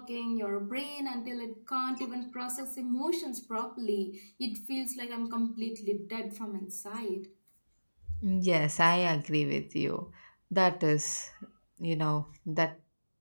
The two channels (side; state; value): both; inverted; correlation -1.00